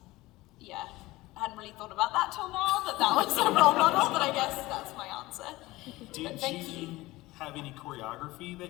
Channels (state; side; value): quieter; right; 19.3 dB